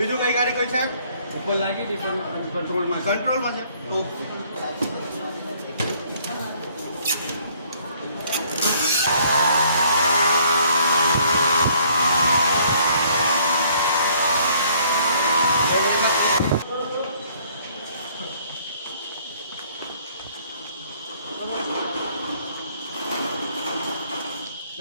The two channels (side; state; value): both; inverted; correlation -0.62